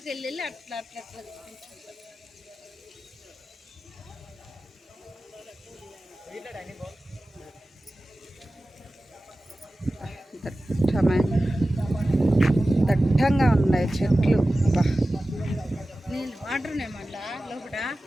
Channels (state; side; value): normal; both; correlation 0.96